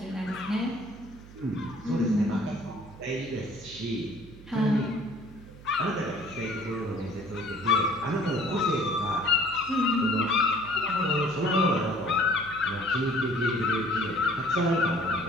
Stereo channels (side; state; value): right; noise; hum, 18 dB below the sound